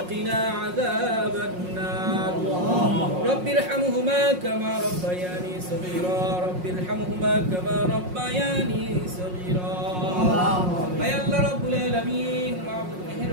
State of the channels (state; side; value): late; left; 5.5 ms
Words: قنا عذاب النار رب ارحمهما كما ربياني صغيرا رب ارحمهما كما ربياني صغيرا يا الله رب العالمين معبود